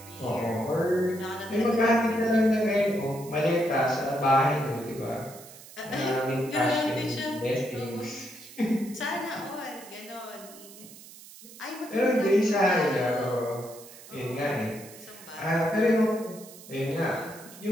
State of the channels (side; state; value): right; noise; hiss, 18 dB below the sound